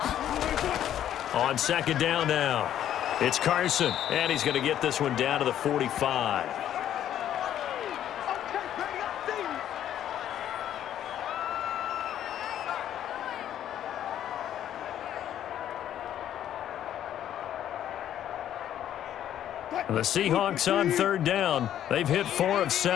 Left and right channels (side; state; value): right; quieter; 11.0 dB